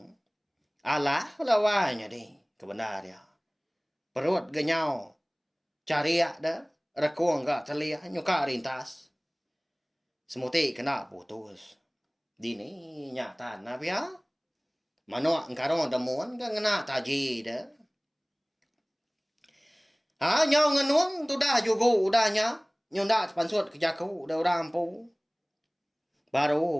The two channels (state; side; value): identical; both; correlation 1.00